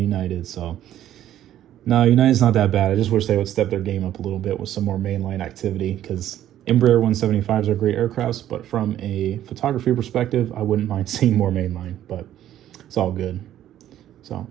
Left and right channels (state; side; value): quieter; left; 12.0 dB